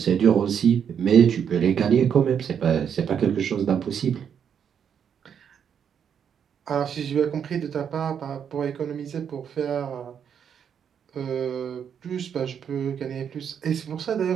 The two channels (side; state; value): left; quieter; 7.9 dB